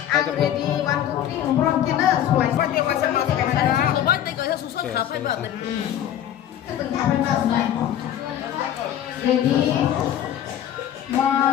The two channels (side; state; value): right; quieter; 10.9 dB